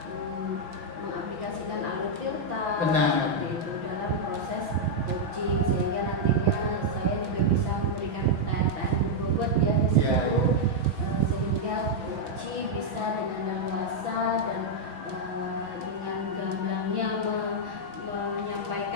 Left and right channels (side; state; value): left; late; 6.0 ms